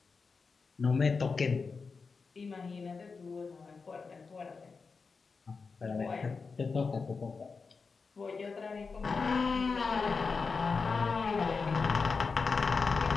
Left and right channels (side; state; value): right; quieter; 4.7 dB